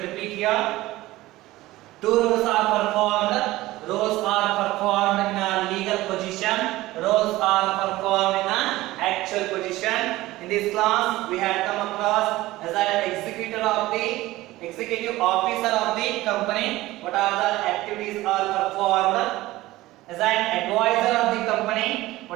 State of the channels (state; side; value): quieter; left; 17.7 dB